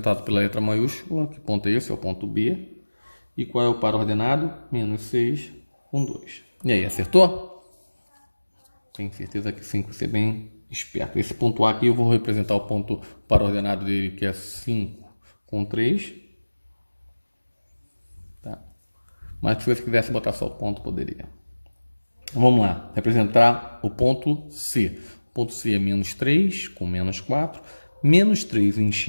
pela letra maiúscula. Que ponto é esse? É o ponto B. E qual é o par ordenado? Menos 6 com 2. E aí, acertou? Tenho certeza que sim, que você é bem esperto. Esse ponto A aqui eu vou representar o ponto par ordenado dele, que é 5 com 3. Mas se você quisesse botar só o ponto, poderia. Vamos lá. Representar o ponto C. O ponto C é menos 3 com menos 4. Menos 3 em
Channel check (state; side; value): inverted; both; correlation -1.00